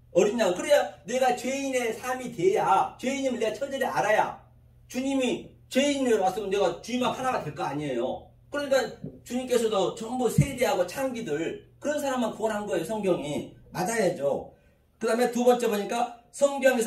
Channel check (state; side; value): identical; both; correlation 1.00